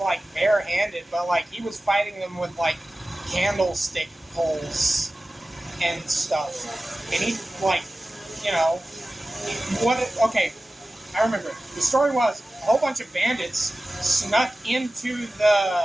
bare-handed, but like he was fighting them with like candlestick poles and stuff. And he, like, you know, okay, I remember. The story was a whole bunch of bandits snuck into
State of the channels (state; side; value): normal; both; correlation 0.96